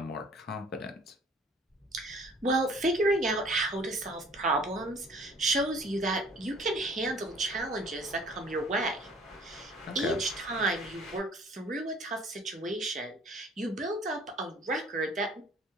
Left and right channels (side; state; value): both; normal; correlation 0.53